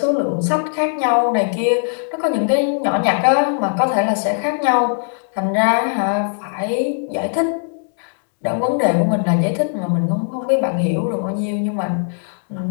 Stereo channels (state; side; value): silent; right; digital silence